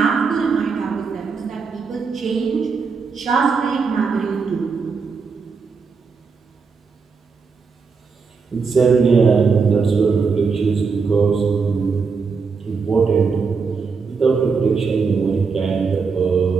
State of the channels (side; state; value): left; quieter; 5.1 dB